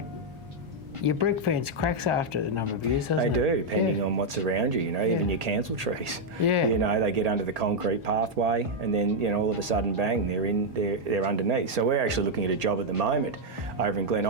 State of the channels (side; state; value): left; late; 1.8 ms